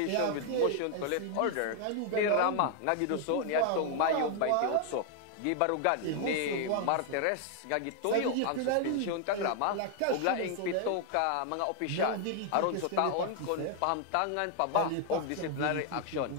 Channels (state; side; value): different; both; correlation 0.00